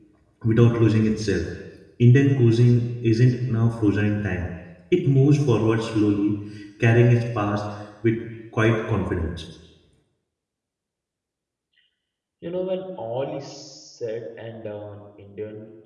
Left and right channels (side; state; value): both; identical; correlation 1.00